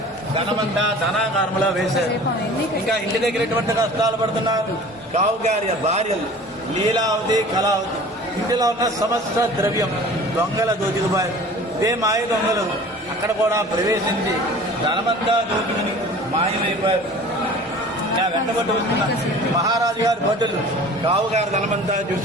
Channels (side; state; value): both; normal; correlation 0.43